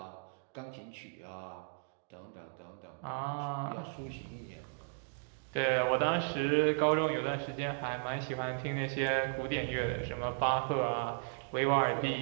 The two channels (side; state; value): left; silent; digital silence